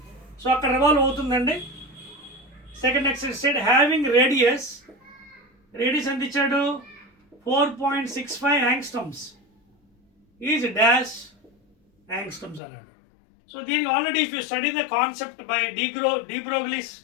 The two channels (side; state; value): right; drops out; at 12.6 s